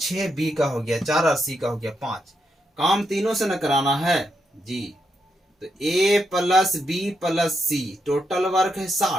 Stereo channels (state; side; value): normal; both; correlation 0.82